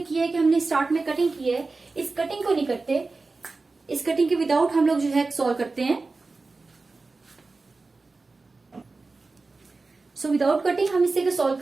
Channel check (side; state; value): left; quieter; 3.7 dB